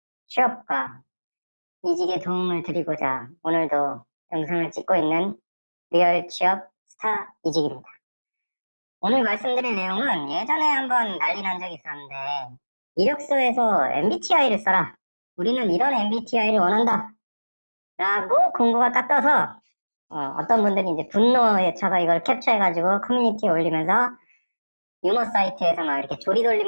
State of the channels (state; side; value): inverted; both; correlation -1.00